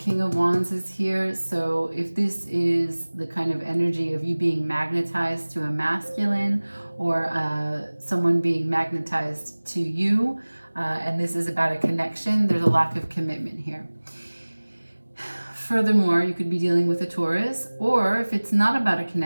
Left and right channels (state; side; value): inverted; both; correlation -1.00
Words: of Wands is here. So if this is the kind of energy of you being magnetized to a masculine, or someone being magnetized to you, and this is about a connection, there's a lack of commitment here. Furthermore, you could be dealing with a Taurus, or if it's not about a